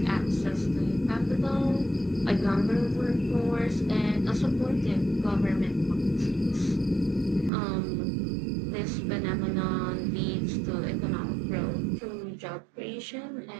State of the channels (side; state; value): left; drops out; at 7.5 s